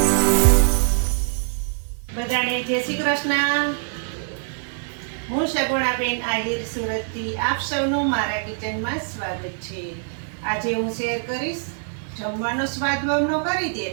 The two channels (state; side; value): silent; left; digital silence